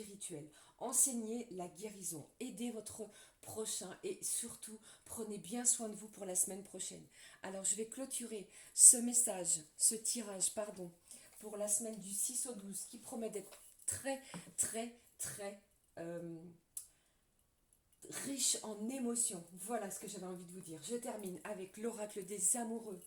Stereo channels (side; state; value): both; identical; correlation 1.00